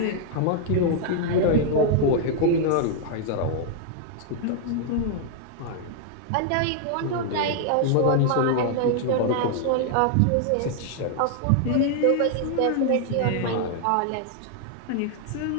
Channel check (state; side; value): different; both; correlation 0.00